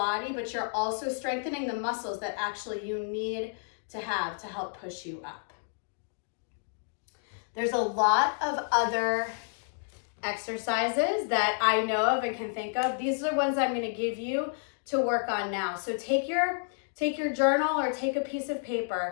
but you're also strengthening the muscles that actually you need to have to help push you up. There's a lot of other exercises that I know of and can think of. These are the ones I'm going to give you to work on now. So take your journal or take a piece of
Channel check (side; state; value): right; silent; digital silence